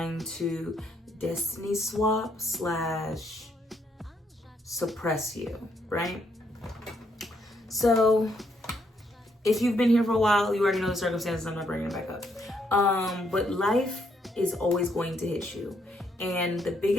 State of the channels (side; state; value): both; normal; correlation 0.73